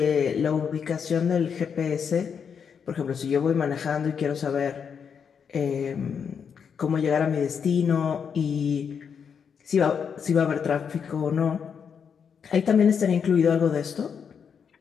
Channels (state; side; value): quieter; right; 6.9 dB